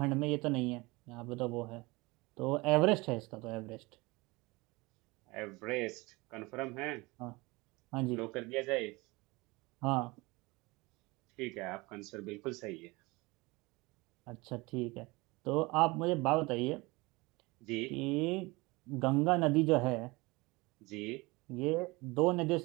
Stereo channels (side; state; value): left; quieter; 23.8 dB